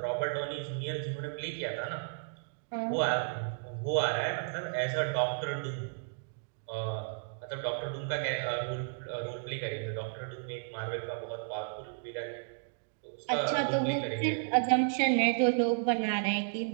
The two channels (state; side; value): silent; left; digital silence